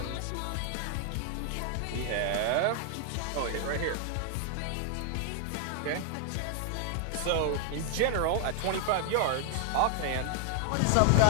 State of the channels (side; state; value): both; different; correlation 0.00